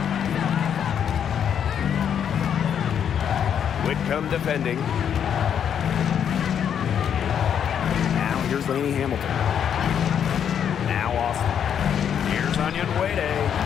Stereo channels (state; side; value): quieter; right; 8.5 dB